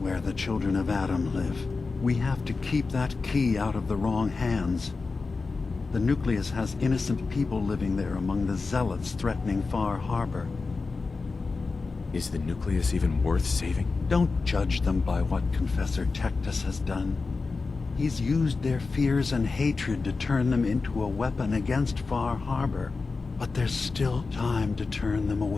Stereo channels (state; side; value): quieter; right; 4.1 dB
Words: the children of Adam live. We have to keep that key out of the wrong hands. The nucleus has innocent people living there among the zealots threatening Far Harbor. Is the nucleus even worth saving? Don't judge them by what Confessor Tektus has done. He's used their fears and hatred to turn them into a weapon against Far Harbor. But there's still time to turn them